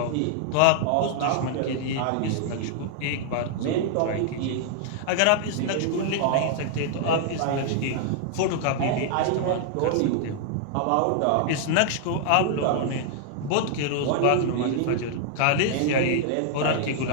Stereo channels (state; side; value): different; both; correlation -0.01